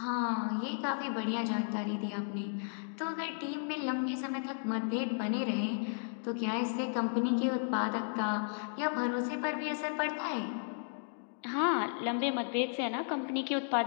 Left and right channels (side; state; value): right; silent; digital silence